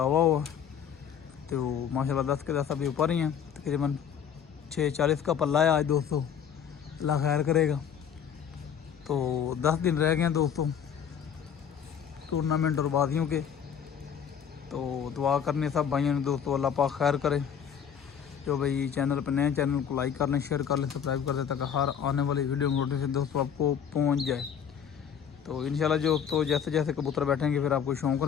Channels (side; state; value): right; quieter; 8.0 dB